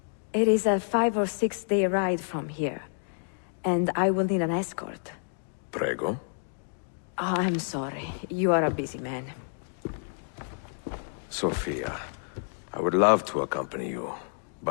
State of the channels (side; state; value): right; silent; digital silence